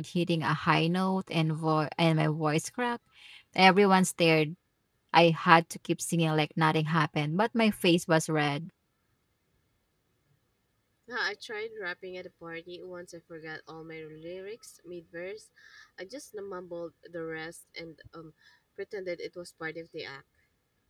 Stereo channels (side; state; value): both; identical; correlation 1.00